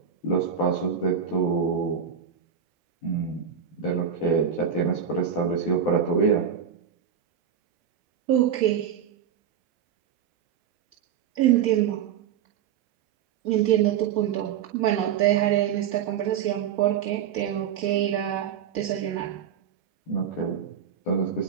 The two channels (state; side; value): quieter; left; 8.2 dB